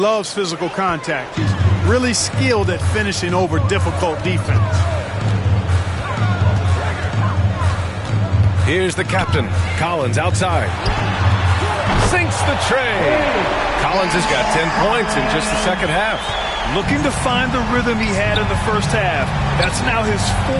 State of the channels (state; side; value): identical; both; correlation 1.00